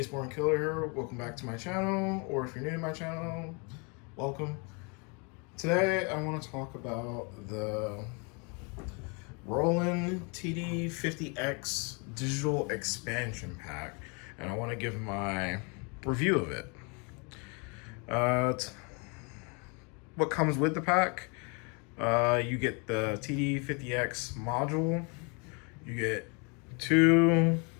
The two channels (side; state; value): right; quieter; 33.1 dB